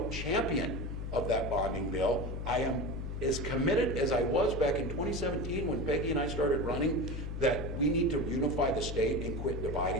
champion of that bonding bill. I am as committed as I was back in 2017 when Peggy and I started running, that we need to unify the state and quit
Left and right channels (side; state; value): left; noise; hum, 5 dB below the sound